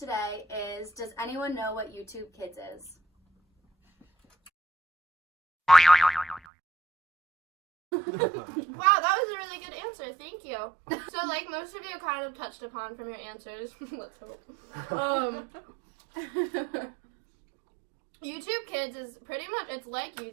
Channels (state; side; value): drops out; left; at 6.4 s